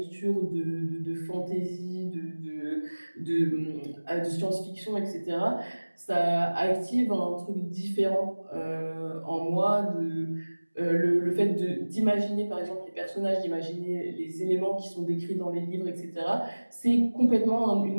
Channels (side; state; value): both; inverted; correlation -1.00